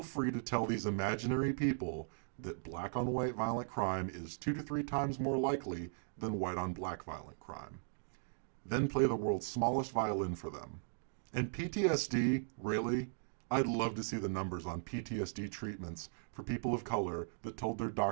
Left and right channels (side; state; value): left; silent; digital silence